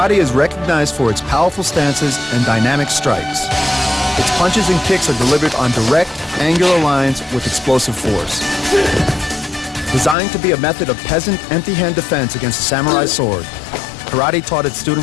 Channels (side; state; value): right; drops out; at 10.2 s